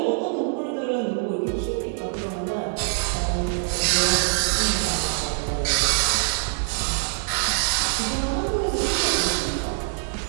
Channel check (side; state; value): left; silent; digital silence